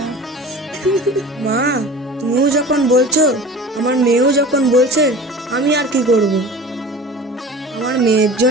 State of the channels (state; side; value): normal; both; correlation 0.38